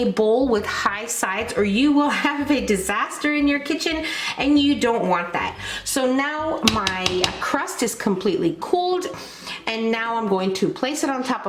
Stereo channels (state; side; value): identical; both; correlation 1.00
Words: bowl with high sides, or you will have a disaster in your kitchen, and you don't want that. So now my crust is completely cooled, and now I'm going to place it on top